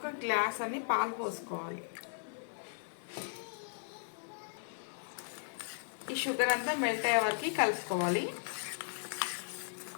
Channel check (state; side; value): silent; right; digital silence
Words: గ్లాస్ అని పాలు పోసుకోవాలి. ఈ షుగర్ అంతా మెల్ట్ అయ్యే వరకు కలుపుకోవాలి.